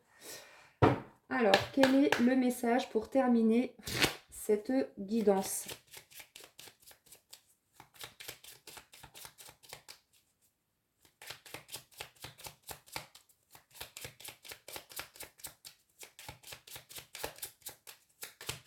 Alors, quel est le message pour terminer cette guidance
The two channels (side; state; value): both; identical; correlation 1.00